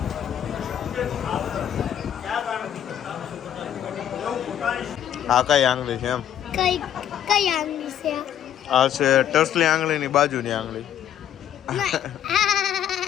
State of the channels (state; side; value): quieter; right; 10.2 dB